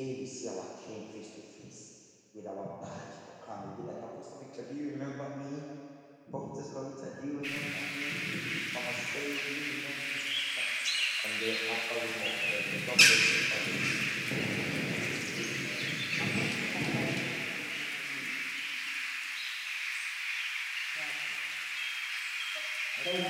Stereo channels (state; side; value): identical; both; correlation 1.00